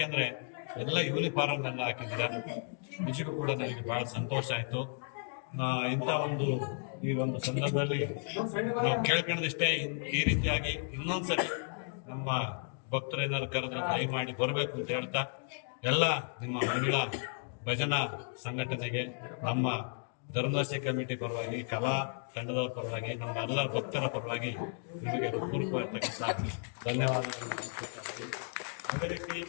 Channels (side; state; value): right; silent; 55 dB below the other